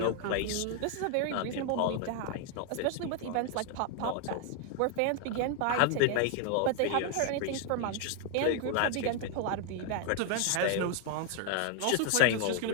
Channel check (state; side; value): different; both; correlation 0.01